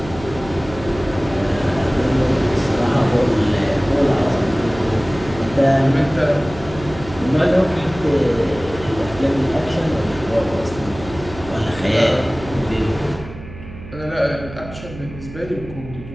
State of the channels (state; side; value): noise; right; hum, 14 dB below the sound